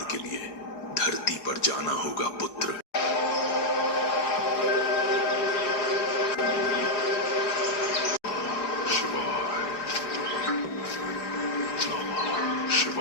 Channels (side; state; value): right; late; 4.8 ms